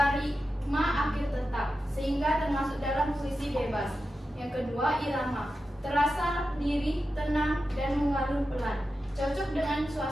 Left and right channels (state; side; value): normal; both; correlation 0.91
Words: akhir tetap, sehingga termasuk dalam puisi bebas. Yang kedua irama, terasa lirih, tenang, dan mengalun pelan, cocok dengan